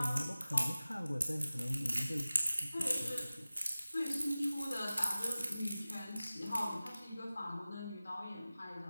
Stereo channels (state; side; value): inverted; both; correlation -0.97